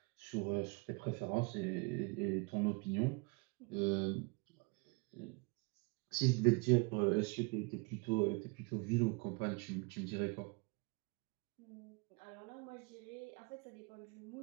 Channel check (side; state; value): left; quieter; 29.8 dB